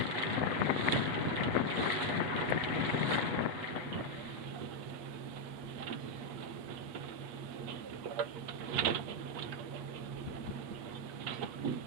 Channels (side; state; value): left; late; 8.3 ms